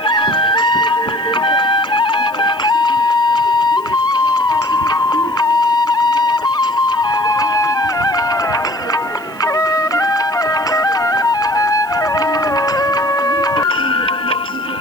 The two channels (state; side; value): noise; left; hiss, 28 dB below the sound